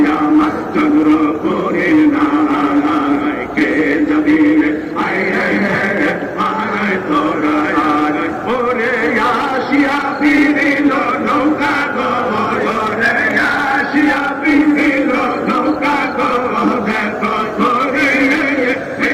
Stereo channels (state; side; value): identical; both; correlation 1.00